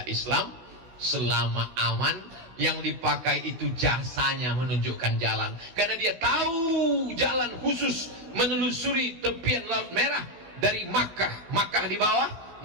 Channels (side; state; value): left; late; 16 ms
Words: Islam selama aman. Yang dipakai itu jasanya menunjukkan jalan, karena dia tahu jalan khusus menelusuri tepian Laut Merah dari Makkah. Makkah di bawah,